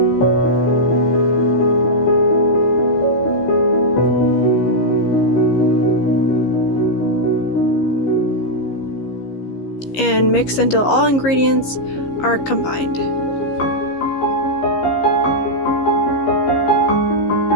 and mix until all ingredients are combined.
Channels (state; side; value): late; right; 15 ms